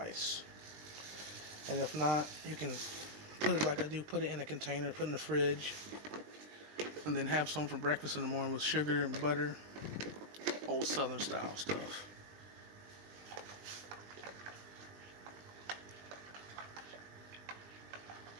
And if not, you can put it like I do, put it in a container, put it in the fridge, and then have some for breakfast in the morning with sugar and butter. Old Southern style stuff.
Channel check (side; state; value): left; late; 20 ms